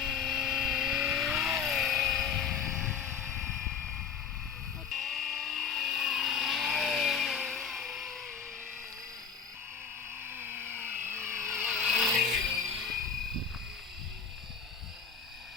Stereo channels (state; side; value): quieter; right; 6.8 dB